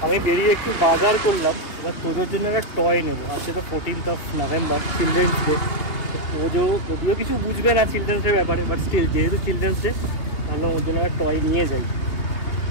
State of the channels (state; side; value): late; right; 2.8 ms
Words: আমি বেরিয়ে একটু বাজার করলাম, এবার তোজোর জন্য একটা টয় নেবো। আজকে তো 14th November, children's day. Tojo যদিও কিছু বুঝবে না চিলড্রেন্স ডে ব্যাপারে, বাট স্টিল যেহেতু চিলড্রেন্স ডে ভাবলাম ওর জন্য একটা টয় নিয়ে যাই।